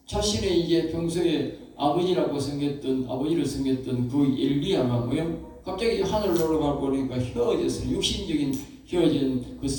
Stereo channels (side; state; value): both; identical; correlation 1.00